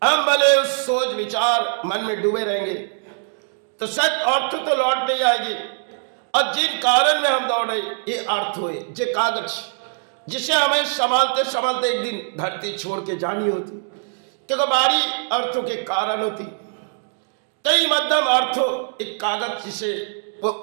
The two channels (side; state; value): left; silent; digital silence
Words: हम भले उस सोच विचार मन में डूबे रहेंगे तो सच अर्थ तो लौट नहीं आएगी। और जिन कारण में हम दौड़े ये अर्थ हुए, ये कागज जिसे हमें संभालते संभालते एक दिन धरती छोड़ के जानी होती, क्योंकि बारी अर्थों के कारण होती। कई मध्यम अर्थों एक कागज जिसे वो